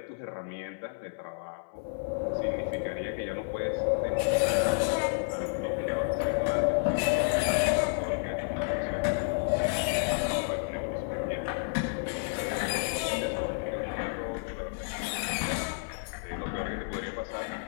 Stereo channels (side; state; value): right; silent; 57 dB below the other